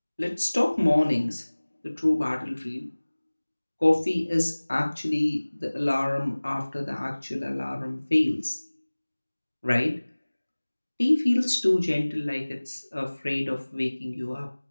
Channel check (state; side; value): inverted; both; correlation -1.00